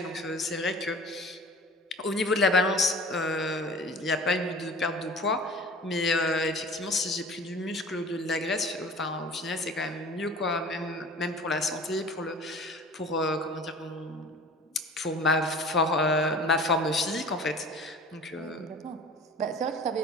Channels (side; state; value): both; normal; correlation 0.42